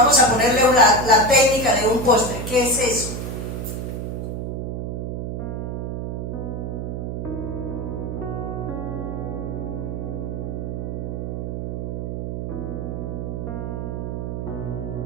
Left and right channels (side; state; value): right; noise; hum, 4 dB below the sound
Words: a ponerle la técnica de un postre. ¿Qué es eso?